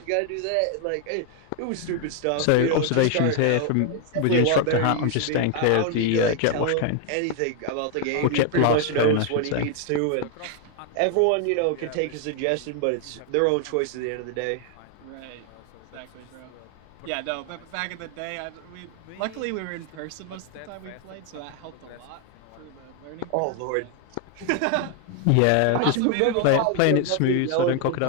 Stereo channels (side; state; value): both; different; correlation 0.00